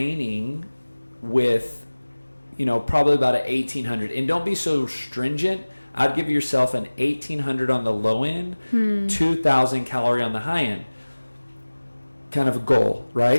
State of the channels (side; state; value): both; inverted; correlation -1.00